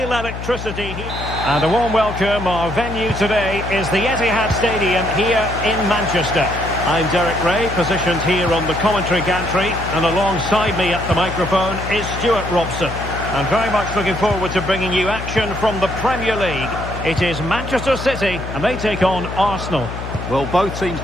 electricity here. And a warm welcome. Our venue today is the Etihad Stadium here in Manchester. I'm Derek Ray, positioned here on the commentary gantry, and alongside me at the microphone is Stuart Robson. I'm very much looking forward to bringing you action from the Premier League. It is Manchester City, and they take on Arsenal. Well, both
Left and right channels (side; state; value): left; noise; hum, 8 dB below the sound